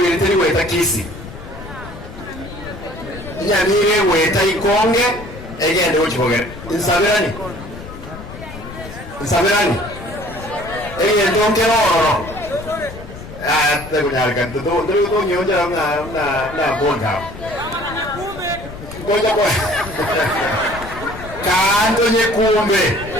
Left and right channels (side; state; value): left; noise; rumble, 13 dB below the sound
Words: ile teli weta kisi nyamire weta ikonge egende uchibogere insabirani egende ongeroro tegunyalika ndo nyonja na bonda koja kwa kanto nyekumbe